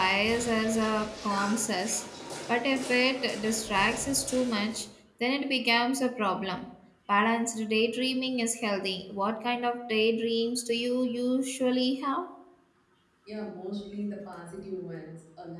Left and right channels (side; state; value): both; identical; correlation 1.00